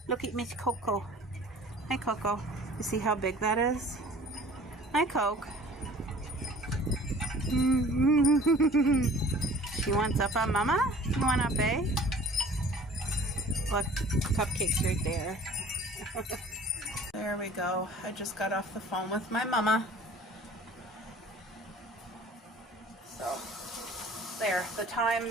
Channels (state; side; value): normal; both; correlation 0.49